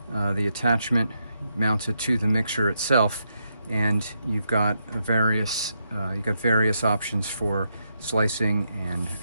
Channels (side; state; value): both; inverted; correlation -0.81